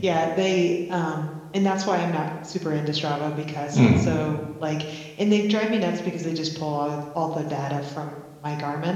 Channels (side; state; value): both; identical; correlation 1.00